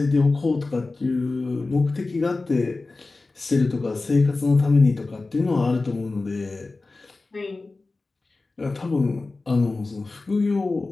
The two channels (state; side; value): quieter; right; 3.5 dB